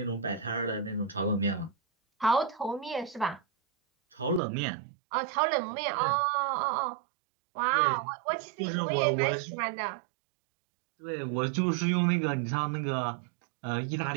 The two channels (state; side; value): drops out; left; at 4.4 s